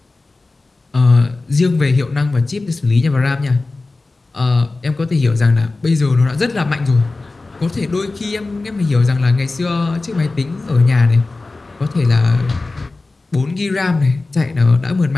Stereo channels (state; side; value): quieter; right; 3.4 dB